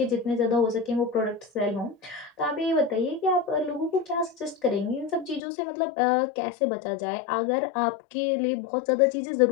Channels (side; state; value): right; drops out; at 5.4 s